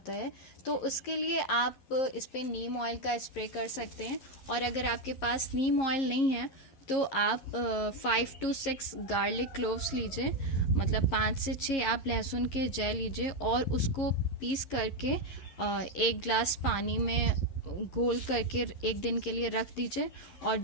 है। तो उसके लिए आप इस पर नीम ऑयल का स्प्रे कर सकते हैं। और अगर आपके पास नीम ऑयल नहीं है तो आप 5 to 6 गार्लिक क्लोव्स लीजिए, मतलब 5 से 6 आप लहसुन के जय लीजिए और उसको पीस करके 1 ग्लास पानी में घोल करके 1 दिन के लिए रख दीजिए और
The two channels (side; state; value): right; late; 11 ms